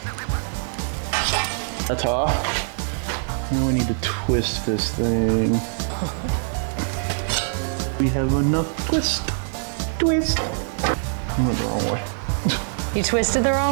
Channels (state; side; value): silent; left; digital silence